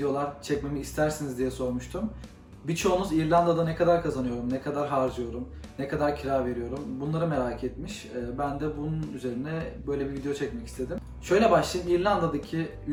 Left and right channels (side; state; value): both; identical; correlation 1.00